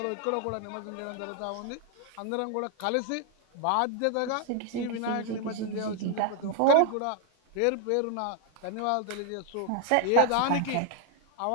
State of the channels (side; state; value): both; different; correlation 0.00